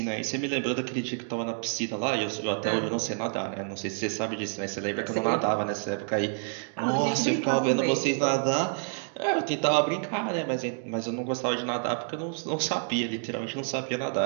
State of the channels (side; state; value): left; silent; 59 dB below the other